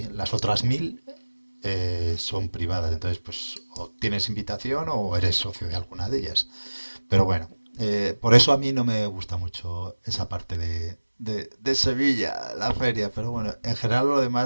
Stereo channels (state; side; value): inverted; both; correlation -1.00